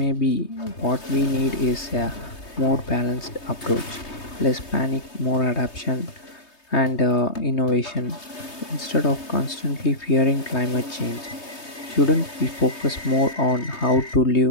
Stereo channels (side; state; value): right; late; 3.2 ms